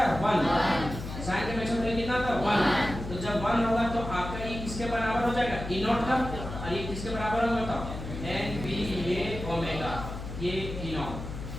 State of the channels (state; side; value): noise; left; hum, 8 dB below the sound